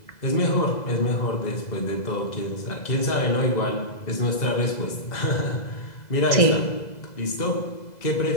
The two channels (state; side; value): late; right; 2.0 ms